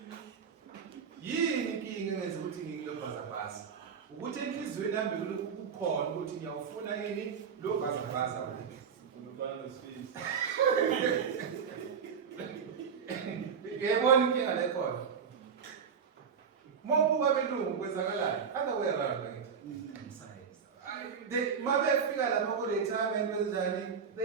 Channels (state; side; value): quieter; left; 6.7 dB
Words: Yini inkinga engenza ukuthi ngikulo bhazabhaza? Ukuthi enhliziyweni yami kukhona ukuthi ngiyawufuna yini lo bhazabhaza wethu. Ngiyabona inkinga la ikhona. Mobuka belungu kwenzakalayo. Other way around. Mabefika lapha ku-retirement kwenzani,